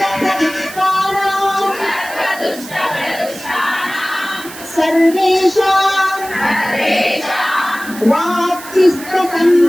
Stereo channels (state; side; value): noise; right; hiss, 15 dB below the sound